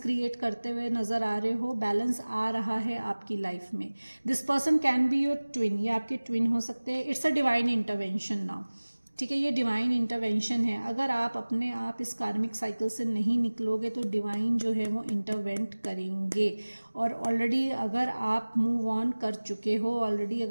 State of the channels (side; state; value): both; inverted; correlation -1.00